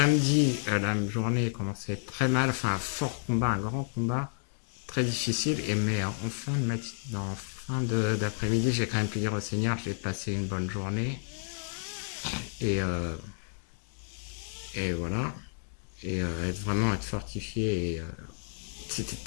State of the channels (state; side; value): silent; right; digital silence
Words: la journée commençait à être très mal, enfin un fort combat, un grand combat, très difficile, mais en fin d'après-midi, j'ai quand même pu dire au Seigneur, j'ai passé une bonne journée, et voilà, et être fortifié, et c'était